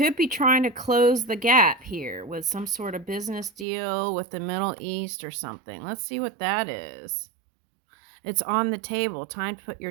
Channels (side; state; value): left; drops out; at 3.7 s